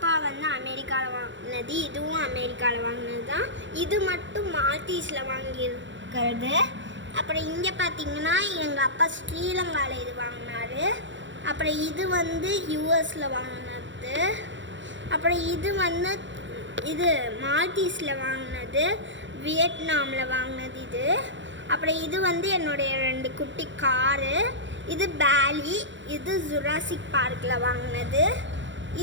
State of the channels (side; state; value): left; late; 0.54 ms